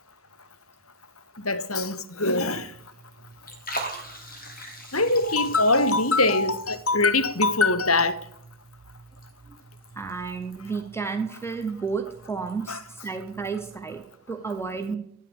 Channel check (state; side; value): normal; both; correlation -0.13